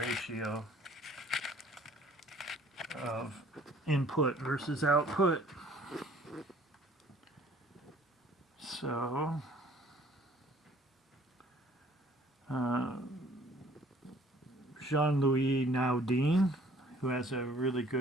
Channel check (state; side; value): normal; both; correlation 0.56